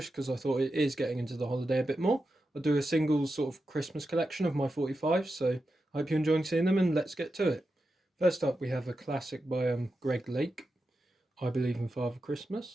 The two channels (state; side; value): normal; both; correlation 0.89